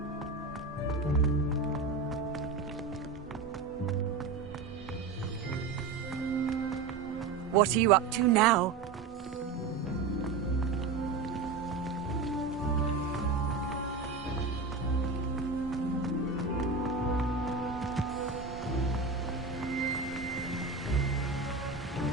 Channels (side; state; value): left; quieter; 4.4 dB